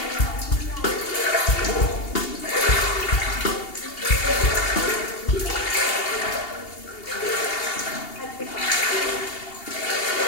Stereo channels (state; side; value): late; right; 2.8 ms